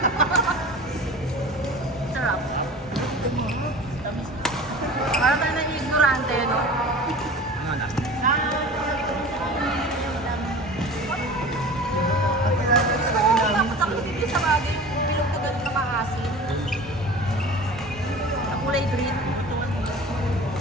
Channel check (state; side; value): normal; both; correlation 0.39